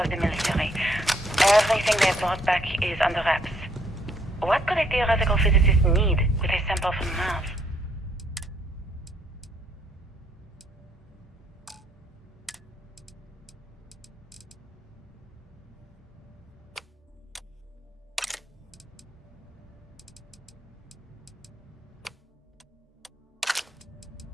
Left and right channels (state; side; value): normal; both; correlation 0.68